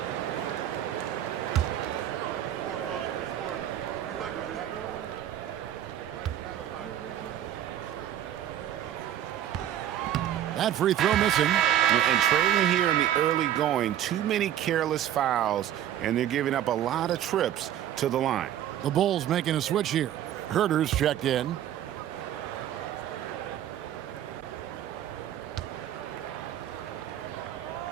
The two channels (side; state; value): left; quieter; 11.2 dB